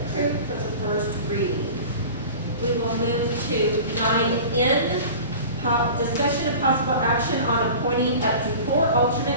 for the first reading. We will move to 9N, discussion of possible action on appointing up to 4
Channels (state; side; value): inverted; both; correlation -0.38